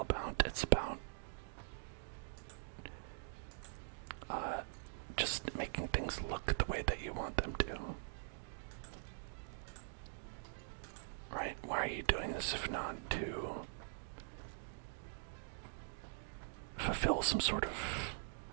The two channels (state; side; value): silent; left; digital silence